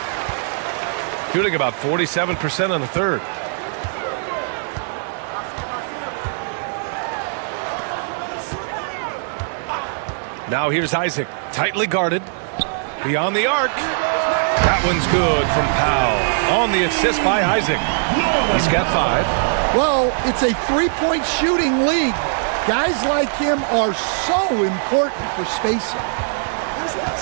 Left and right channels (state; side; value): silent; left; 62 dB below the other